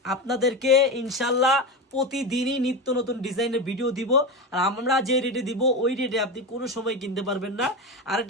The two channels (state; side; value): normal; both; correlation 0.19